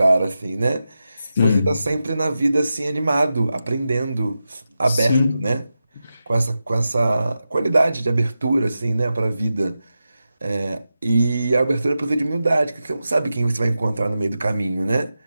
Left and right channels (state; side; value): inverted; both; correlation -0.91